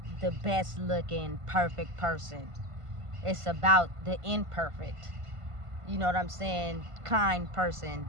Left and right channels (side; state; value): left; late; 1.5 ms